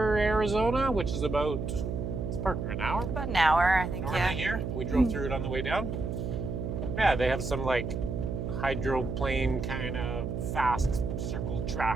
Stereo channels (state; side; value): noise; right; hum, 3 dB below the sound